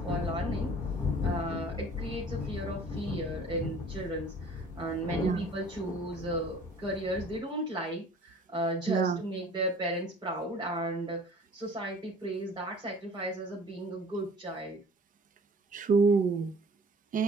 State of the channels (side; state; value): both; normal; correlation 0.48